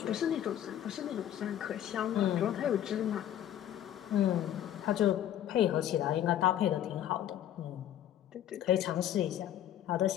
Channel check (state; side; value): quieter; right; 11.3 dB